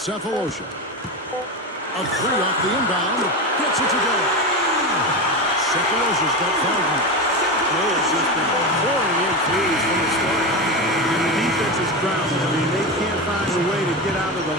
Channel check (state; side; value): normal; both; correlation 0.19